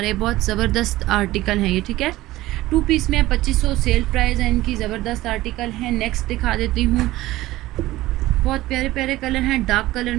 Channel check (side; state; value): left; quieter; 17.0 dB